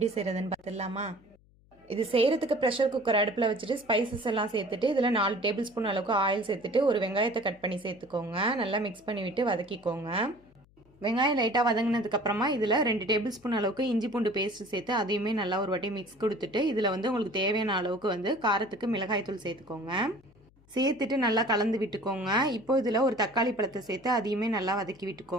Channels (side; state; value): left; noise; hum, 30 dB below the sound